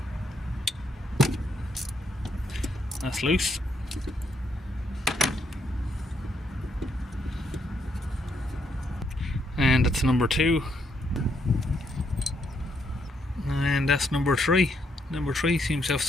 That's loose. And that's number 2. And that's number 3. Number 3 seems to have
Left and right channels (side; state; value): both; normal; correlation 0.75